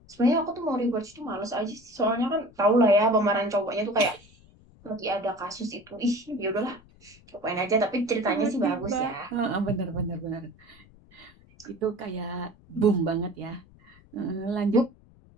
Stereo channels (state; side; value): noise; left; rumble, 26 dB below the sound